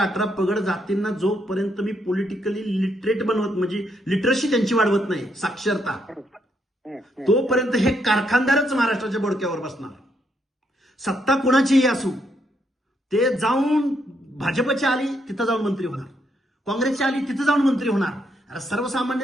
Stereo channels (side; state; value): both; normal; correlation 0.76